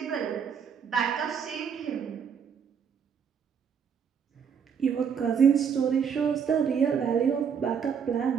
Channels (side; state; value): left; quieter; 7.2 dB